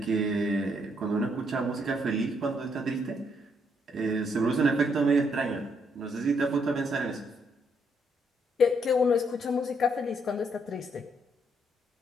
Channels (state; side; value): normal; both; correlation 0.73